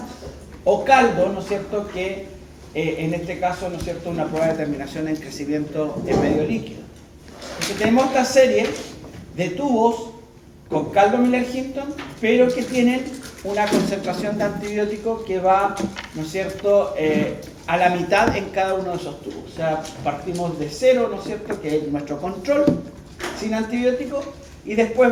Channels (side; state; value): both; identical; correlation 1.00